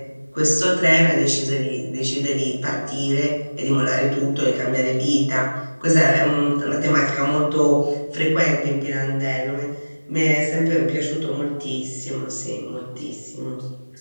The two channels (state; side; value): inverted; both; correlation -1.00